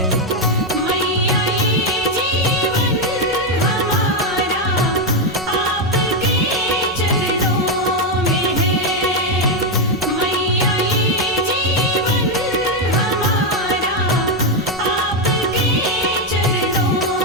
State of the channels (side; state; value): both; normal; correlation 0.04